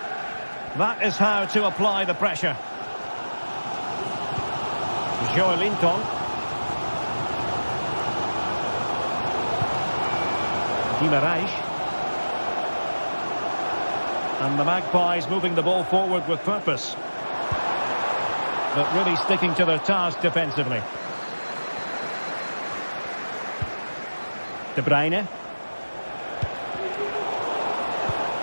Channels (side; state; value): both; inverted; correlation -1.00